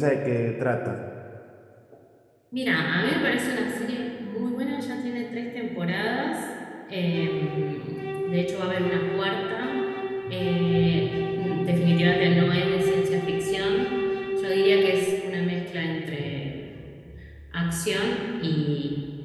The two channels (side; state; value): both; identical; correlation 1.00